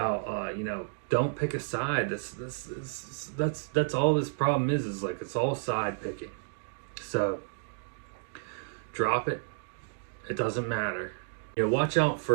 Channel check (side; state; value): left; silent; digital silence